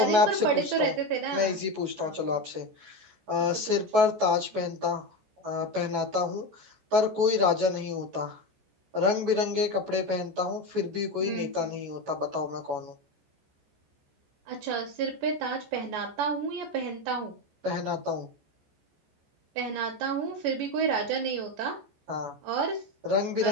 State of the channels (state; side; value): late; left; 14 ms